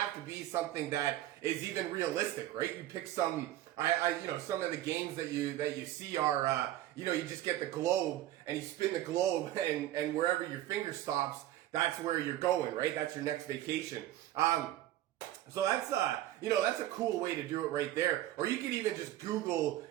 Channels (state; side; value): quieter; left; 13.9 dB